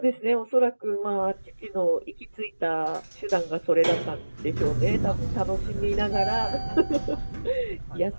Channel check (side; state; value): both; inverted; correlation -1.00